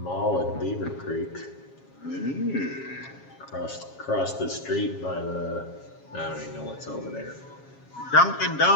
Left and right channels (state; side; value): late; right; 7.3 ms